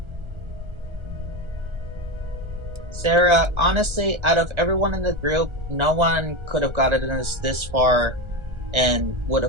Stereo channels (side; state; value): left; late; 1.3 ms